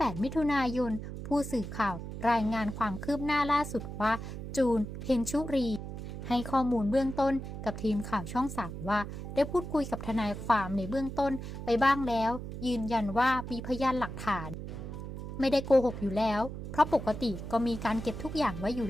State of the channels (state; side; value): noise; right; hum, 8 dB below the sound